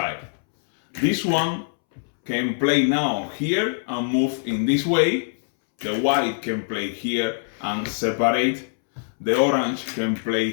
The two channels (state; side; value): silent; right; 63 dB below the other